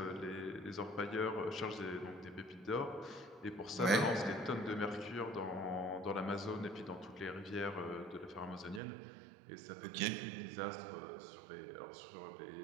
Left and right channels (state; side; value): drops out; left; at 8.8 s